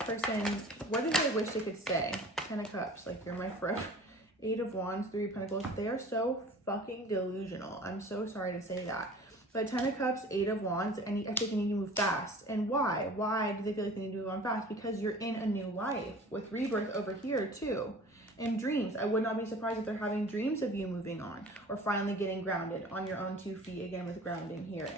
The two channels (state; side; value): normal; both; correlation 0.44